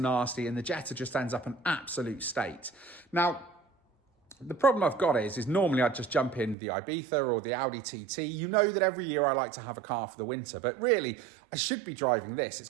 nasty, and the Jetta just ends up an absolute state. Now, the problem I've got is normally I'd just jump in the Ibiza or the Audi TT. You know that every year I like to have a car for the winter, but really I should be driving this. It's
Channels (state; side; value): drops out; left; at 6.6 s